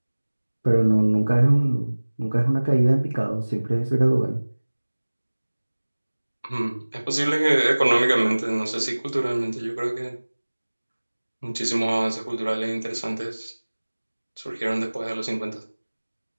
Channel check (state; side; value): inverted; both; correlation -1.00